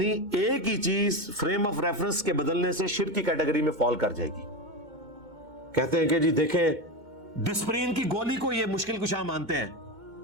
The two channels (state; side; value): late; left; 2.2 ms